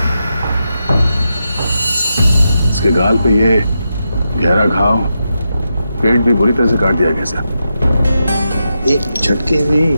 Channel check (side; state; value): both; inverted; correlation -0.87